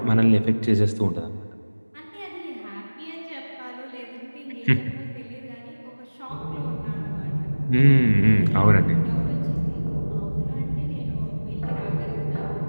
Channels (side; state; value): both; inverted; correlation -1.00